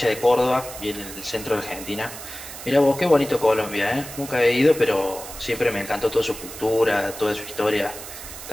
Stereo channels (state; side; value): noise; right; hiss, 12 dB below the sound